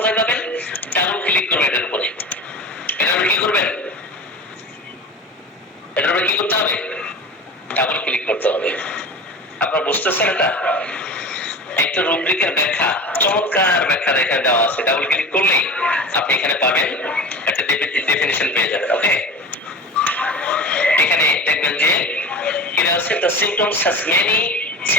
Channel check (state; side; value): normal; both; correlation 0.32